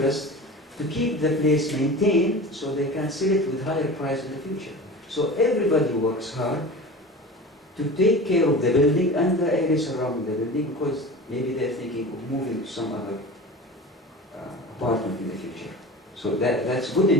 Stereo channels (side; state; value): both; normal; correlation 0.34